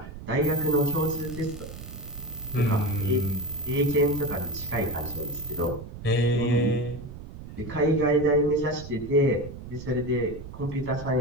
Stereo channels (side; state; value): right; noise; rumble, 12 dB below the sound